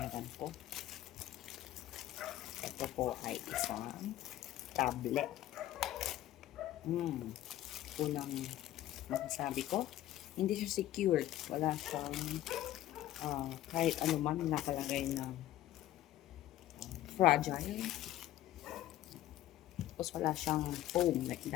ko. Ito po ay isang tablet. Unang masasabi ko, hindi siya secured. Wala siyang kahit ano man nakalagay na fragile. Tapos wala siyang foam like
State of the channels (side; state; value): right; quieter; 13.9 dB